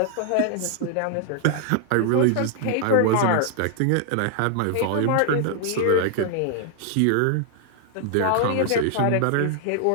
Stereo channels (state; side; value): different; both; correlation 0.00